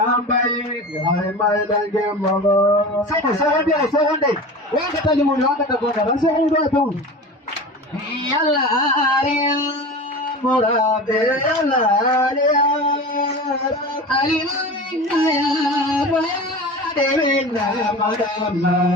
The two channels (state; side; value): normal; both; correlation 0.32